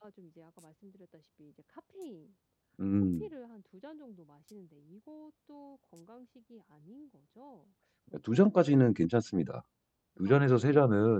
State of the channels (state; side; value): identical; both; correlation 1.00